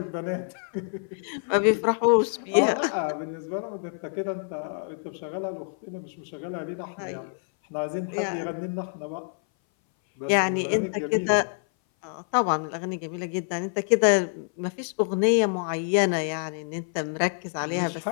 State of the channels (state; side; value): silent; right; 58 dB below the other